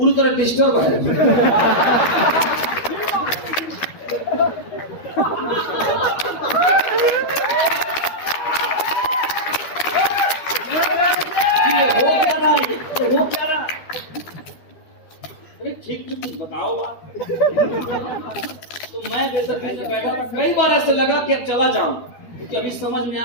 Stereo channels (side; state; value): right; late; 13 ms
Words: तरह डिस्टर्ब है। हो क्या रहा? अरे ठीक कुछ बताओ बात। तो मैं जैसा बैठा था, कई बार ऐसे लगा कि अब चला जाऊं, क्योंकि अभी समझ में